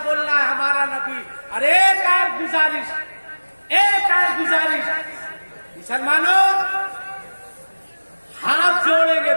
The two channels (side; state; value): both; inverted; correlation -1.00